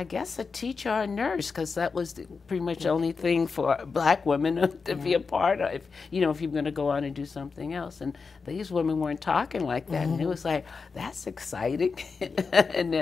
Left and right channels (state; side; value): quieter; right; 4.9 dB